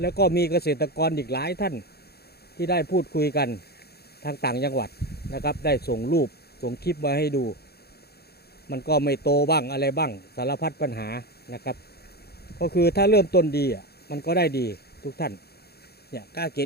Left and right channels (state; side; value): late; right; 0.46 ms